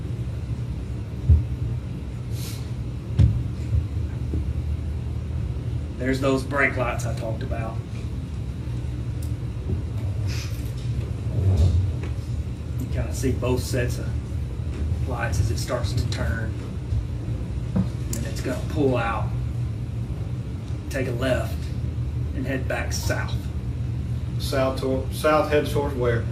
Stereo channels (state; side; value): identical; both; correlation 1.00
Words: There's those brake lights I talked about. You kind of see both sets of lights as it starts to turn. And it's going to pull out, take a left, and head back south. South heads towards where?